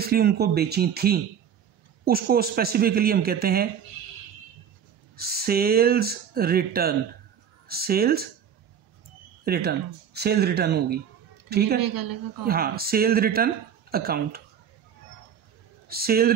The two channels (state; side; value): quieter; left; 8.3 dB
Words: उनको बेची थी, उसको स्पेसिफिकली हम कहते हैं सेल्स रिटर्न। सेल्स रिटर्न होगी, ठीक है। हाँ, sales return account, sales